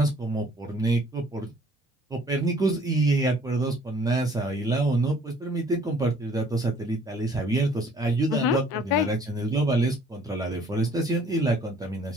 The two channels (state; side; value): normal; both; correlation 0.57